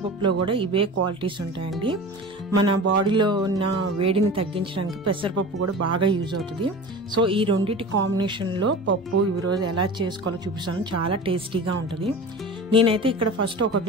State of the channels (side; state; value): both; normal; correlation 0.34